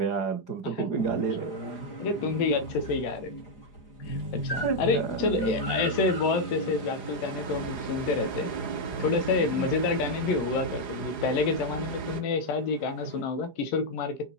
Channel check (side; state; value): right; late; 4.9 ms